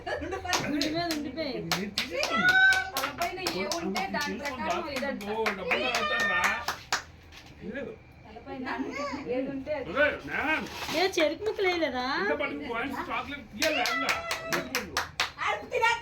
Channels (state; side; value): identical; both; correlation 1.00